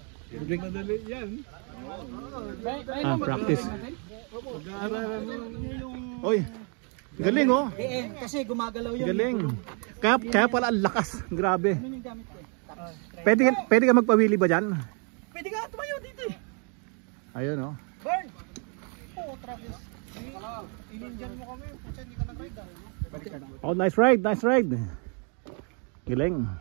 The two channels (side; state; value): left; quieter; 38.0 dB